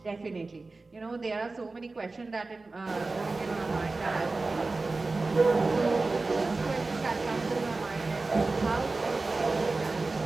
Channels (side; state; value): left; quieter; 3.5 dB